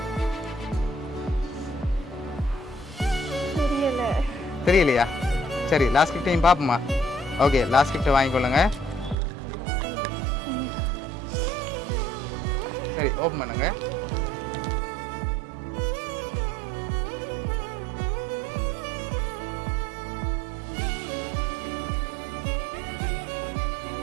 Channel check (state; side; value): drops out; left; at 9.2 s